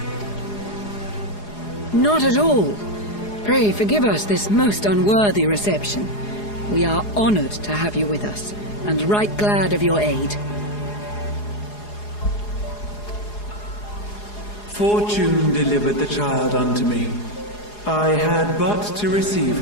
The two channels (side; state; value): right; late; 4.8 ms